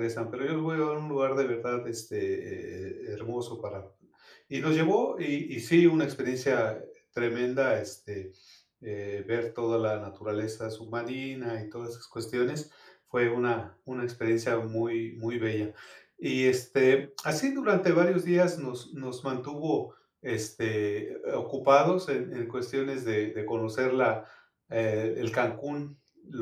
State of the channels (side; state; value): both; identical; correlation 1.00